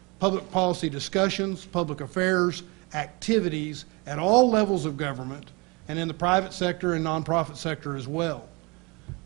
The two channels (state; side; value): quieter; left; 27.2 dB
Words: public policy discussions, public affairs, activities at all levels of government and in the private sector and nonprofit sector as well.